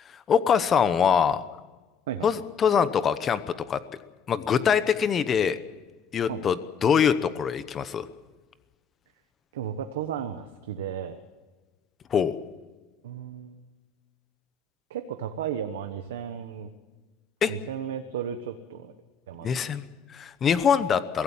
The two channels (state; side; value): quieter; right; 5.8 dB